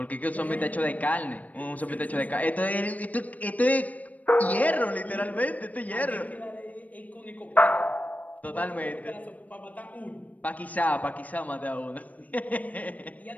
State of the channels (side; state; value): right; late; 0.073 ms